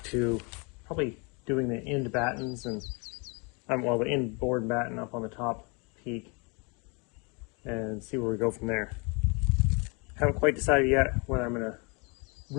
to probably doing the end battens and well, the end board batten up on the top peak, and see where we go from there. Haven't quite decided yet whether I'm gonna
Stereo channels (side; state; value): right; quieter; 31.7 dB